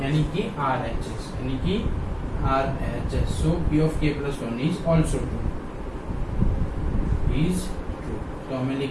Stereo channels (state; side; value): identical; both; correlation 1.00